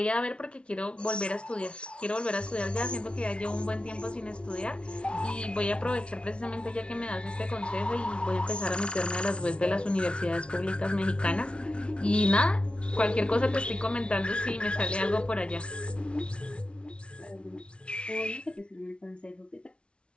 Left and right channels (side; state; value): right; late; 0.059 ms